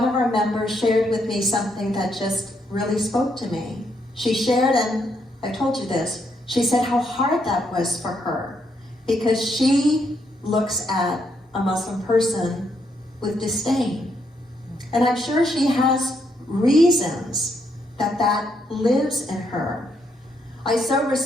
of our members shared with me something that just really spoke to me. She shared, and I told you this, she said how hard that was for her, because she looks at a Muslim person with disdain. And I'm sure she has reasons that lives in her. I so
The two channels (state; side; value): normal; both; correlation 0.76